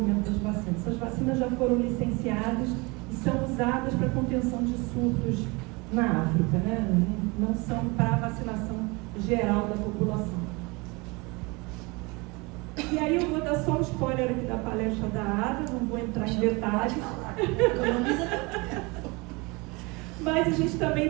das vacinas. Essas vacinas já foram licenciadas e são usadas para contenção de surtos na África, né? Não são para a vacinação geral da população. E aí eu vou dar só um spoiler aqui da palestra da Ada, não vou entrar em detalhes. Mas a gente também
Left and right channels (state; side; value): quieter; left; 26.6 dB